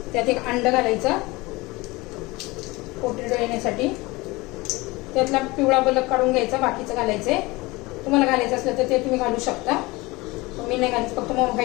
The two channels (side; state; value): right; quieter; 22.5 dB